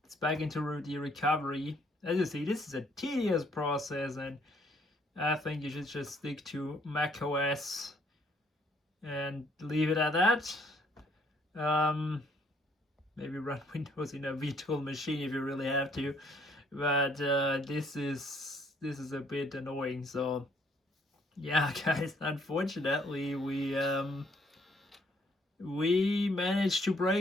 it's back into the recovery. As you see, this is a tedious process, and I think you should just stick to Mac OS and leave it at that. Maybe run Windows in a virtual machine if you really have to, but this is a bit annoying. So yeah, guys, unfortunately we managed to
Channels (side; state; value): both; normal; correlation 0.66